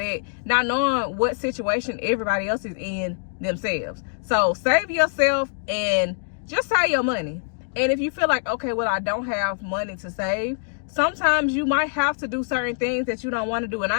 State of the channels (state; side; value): silent; right; digital silence